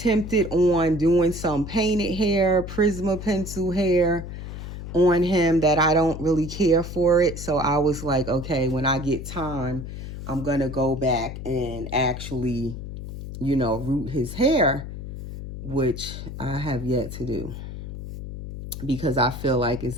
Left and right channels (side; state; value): left; noise; hum, 9 dB below the sound